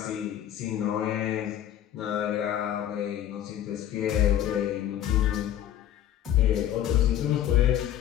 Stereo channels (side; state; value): right; quieter; 11.2 dB